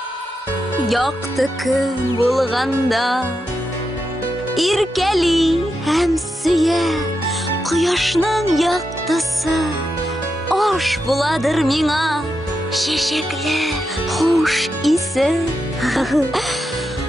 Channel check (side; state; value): both; normal; correlation 0.86